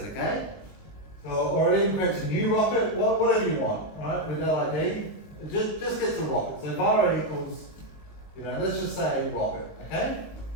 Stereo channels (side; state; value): right; late; 20 ms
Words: okay? Or it even creates a new rocket, whatever you want, right, with that ID. It just gets a rocket. So var equals, you know, let's just say rocket, okay?